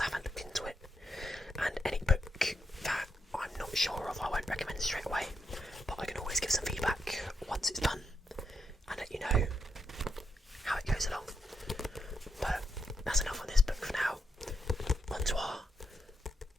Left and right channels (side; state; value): both; normal; correlation 0.81